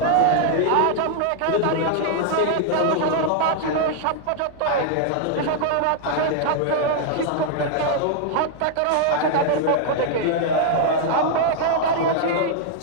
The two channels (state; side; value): different; both; correlation 0.00